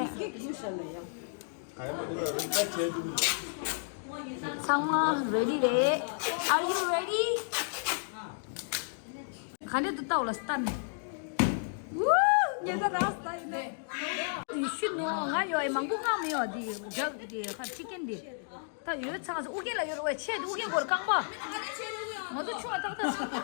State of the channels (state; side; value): silent; right; digital silence